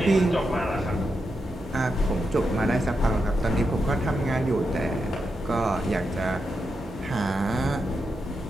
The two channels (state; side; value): normal; both; correlation 0.86